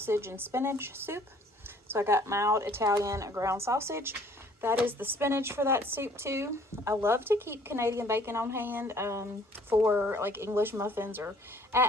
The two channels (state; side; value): normal; both; correlation 0.57